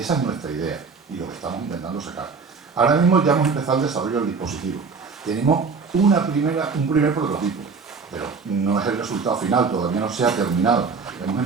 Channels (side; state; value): left; quieter; 5.0 dB